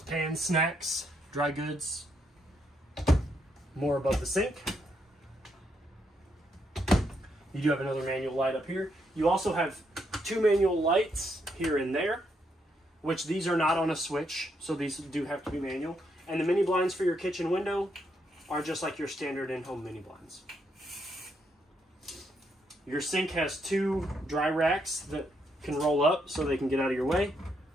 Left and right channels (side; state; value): both; normal; correlation 0.77